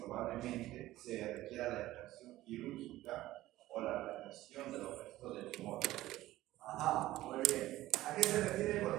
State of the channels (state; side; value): quieter; left; 15.9 dB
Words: se requiera la extracción quirúrgica o la retención de los restos del tumor. Ajá, muy bien. ¿A qué se refiere